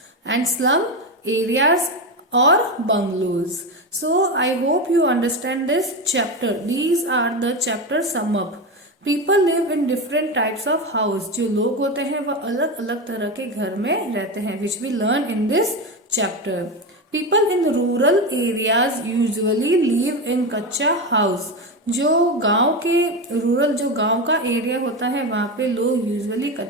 and slum areas or bungalows. So I hope you understand this chapter. These are the chapter sum up. People live in different types of house, जो लोग होते हैं वह अलग अलग तरह के घर में रहते हैं, which we learn in this chapter. People in rural areas usually live in kutcha house. जो गांव के रूरल जो गांव का एरिया होता है वहां पे लोग यूजुअली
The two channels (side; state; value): both; normal; correlation 0.17